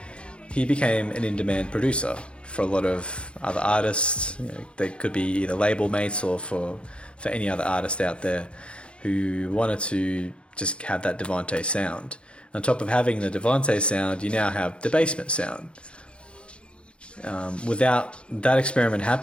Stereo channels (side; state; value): right; late; 0.057 ms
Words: he became an in-demand producer for a lot of other artists. You know, they could be either label mates or for any other artist out there who wanted to just have that Devante sound. On top of having the Devante sound, you now have the Bassment sound. Without that experiment